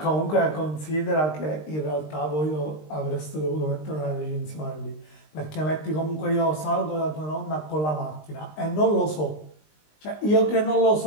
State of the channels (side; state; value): right; late; 20 ms